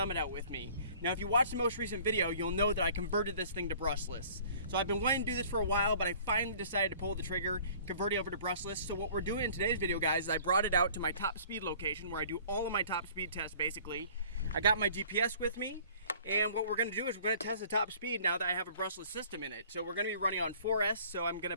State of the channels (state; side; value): inverted; both; correlation -0.51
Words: out with me. Now if you watched the most recent video, you'll know that I converted this thing to brushless. So I've been wanting to do this for a while, but I finally decided to pull the trigger, convert it over to brushless. So what we're doing in today's video, guys, is I brought it out to my top speed location where I do all of my top speed tests basically. I got my GPS with me. And what we're going to do is we're going to test the top speed now that I have a brushless system in it. So we're going to be running on 4S, so I'm going